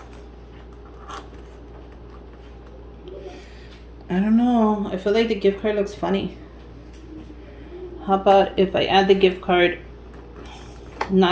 I don't know. I feel like the gift card looks funny. How about if I add the gift card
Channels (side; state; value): both; identical; correlation 1.00